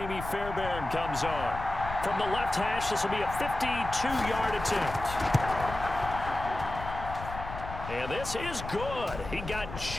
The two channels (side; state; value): left; noise; rumble, 9 dB below the sound